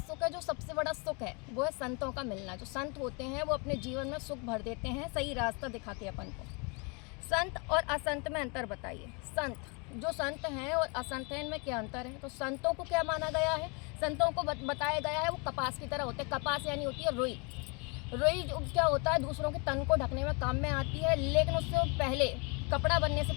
है जो सबसे बड़ा सुख है? वो है संतों का मिलना। जो संत होते हैं वो अपने जीवन में सुख भर देते हैं, सही रास्ता दिखाते हैं अपन को। संत और असंत में अंतर बताइए। जो संत हैं और असंत हैं, इनमें क्या अंतर है? तो संतों को क्या माना गया है? संतों को बताया गया है वो कपास की तरह होते हैं। कपास यानी होती है रुई। रुई जो क्या होता है, दूसरों के तन को ढकने में काम में आती है, लेकिन उससे पहले, कपड़ा बनने से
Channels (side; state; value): right; quieter; 32.2 dB